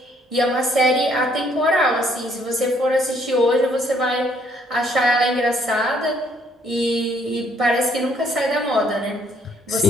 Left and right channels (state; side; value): normal; both; correlation 0.66